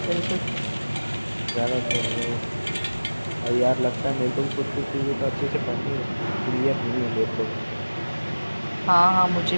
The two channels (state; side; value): inverted; both; correlation -1.00